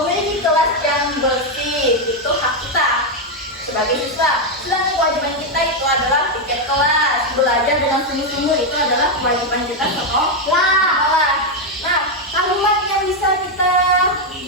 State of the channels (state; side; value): normal; both; correlation 0.03